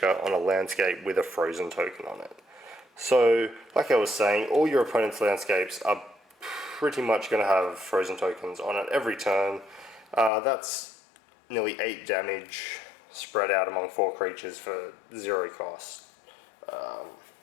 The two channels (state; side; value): drops out; right; at 10.3 s